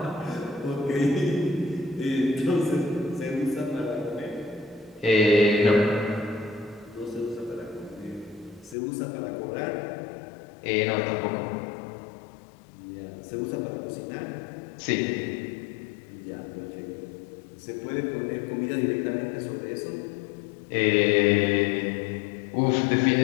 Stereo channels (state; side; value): drops out; right; at 8.8 s